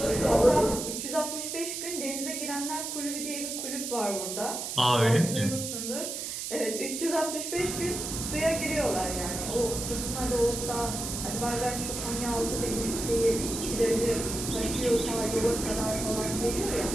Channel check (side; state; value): right; noise; hiss, 5 dB below the sound